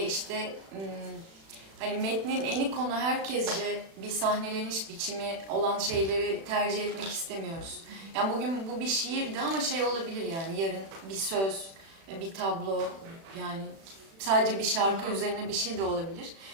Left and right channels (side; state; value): left; late; 36 ms